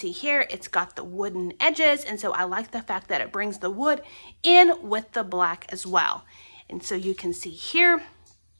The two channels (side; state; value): both; inverted; correlation -1.00